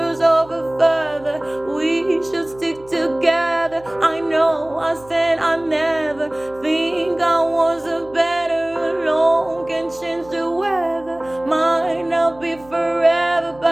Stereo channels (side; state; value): right; noise; hum, 24 dB below the sound